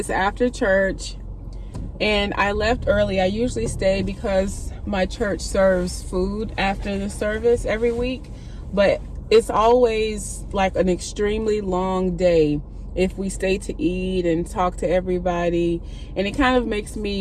after church and I left early. I usually stay because my church serves food after the service every week, but it's always like an extremely long day if we stay to eat and talk to everybody, and it kind of makes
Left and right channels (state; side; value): identical; both; correlation 1.00